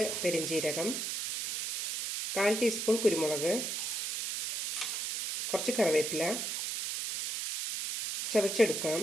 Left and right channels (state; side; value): noise; right; hiss, 3 dB below the sound